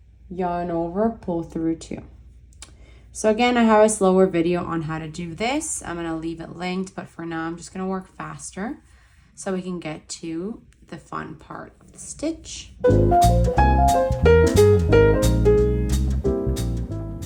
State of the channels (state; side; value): identical; both; correlation 1.00